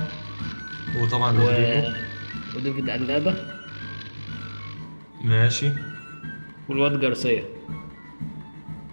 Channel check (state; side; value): inverted; both; correlation -1.00